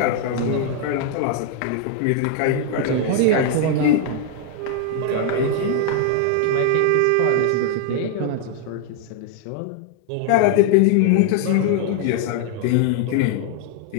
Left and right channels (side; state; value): both; different; correlation 0.00